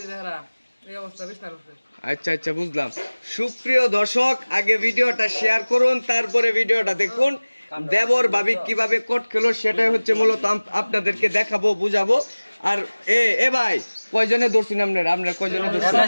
দেহরা এই অবস্থা বিস্তার হচ্ছে। আচ্ছা আচ্ছা বুঝলাম। সুপ্রিয় দর্শক, আগে ভিডিওটা শেয়ার করুন, তারপরে ভিডিওটা দেখুন। দেবর ভাবি কিভাবে কোট খেলো সেটাই হচ্ছে মূলত আপনাদেরকে দেখাবো, বুঝাবো। আর এ ভাই কয়জনে ধরছেন আপনারা কয়জনে ধরছেন?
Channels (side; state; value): both; inverted; correlation -1.00